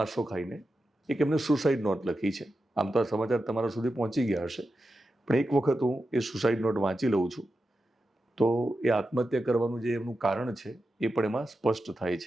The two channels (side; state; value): both; normal; correlation 0.90